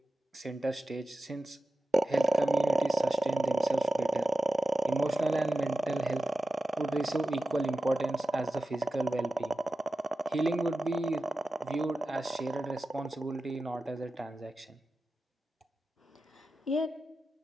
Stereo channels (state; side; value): normal; both; correlation 0.93